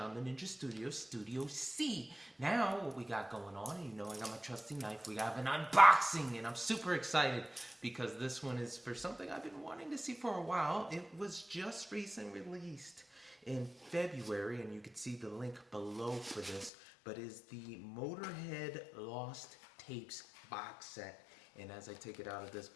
the Ninja Studio, Studio C. Now, what we got going on, you know I got my trusty knife, we have an unboxing, and I'm super excited because this one is for something I've been wanting to see for a while. It was just recently released in February, and you can see the link below for this, but is the Motorhead Lost Tapes box set. And as I take it out of this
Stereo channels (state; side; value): drops out; right; at 16.7 s